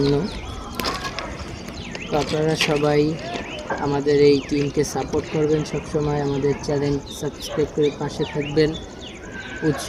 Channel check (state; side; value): identical; both; correlation 1.00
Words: তো আপনারা সবাই আমাদের এই টিমকে সাপোর্ট করবেন, সবসময় আমাদের চ্যানেল সাবস্ক্রাইব করে পাশে থাকবেন,